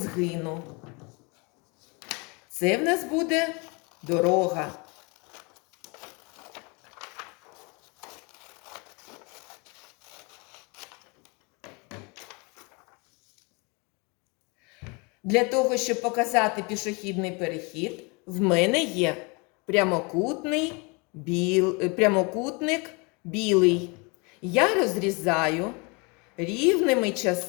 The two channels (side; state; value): right; quieter; 30.1 dB